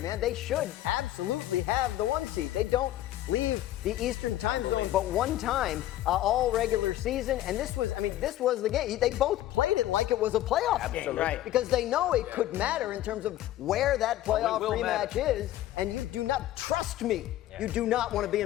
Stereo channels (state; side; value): quieter; right; 13.9 dB